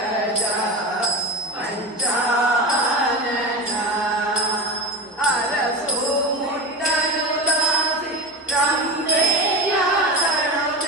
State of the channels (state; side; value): normal; both; correlation 0.21